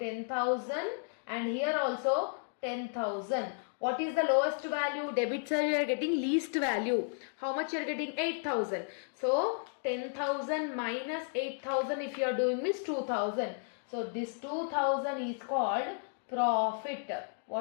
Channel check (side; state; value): right; silent; 56 dB below the other